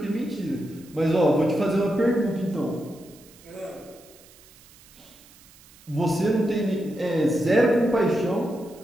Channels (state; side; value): noise; right; hiss, 25 dB below the sound